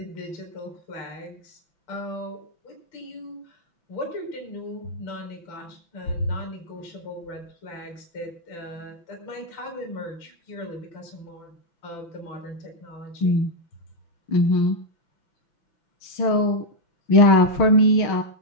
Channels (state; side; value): late; right; 5.9 ms